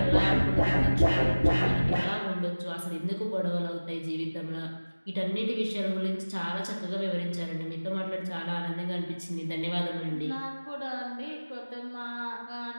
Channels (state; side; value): inverted; both; correlation -1.00